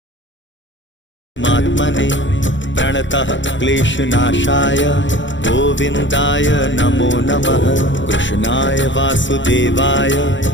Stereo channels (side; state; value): right; late; 0.54 ms